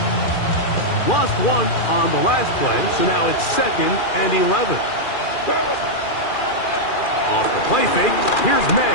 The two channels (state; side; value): late; right; 2.4 ms